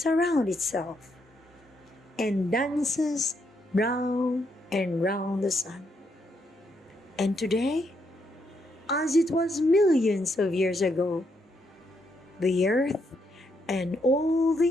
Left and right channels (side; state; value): both; normal; correlation 0.77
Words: around itself and dances round and round the sun. And today, as it was millions of years ago, the earth and all